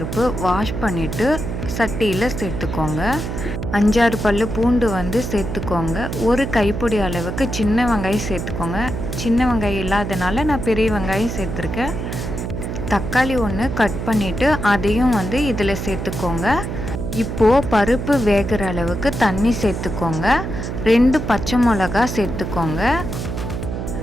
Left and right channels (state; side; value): noise; right; hum, 5 dB below the sound